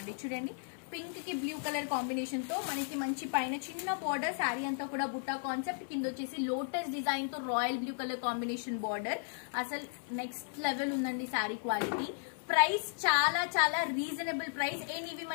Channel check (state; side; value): silent; right; 54 dB below the other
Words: చూడండి, పింక్ కి బ్లూ కలర్ కాంబినేషన్ తో మనకి మంచి పైన చిన్న బార్డర్, శారీ అంతా కూడా బుట్టా కాన్సెప్ట్, కింద వచ్చేసి లోటస్ డిజైన్ తో royal blue colour combination border. అసలు నెక్స్ట్ లెవెల్ ఉందండి శారీ క్వాలిటీ. ప్రైస్ చాలా చాలా రీజనబుల్ ప్రైస్. అండ్ ఇవి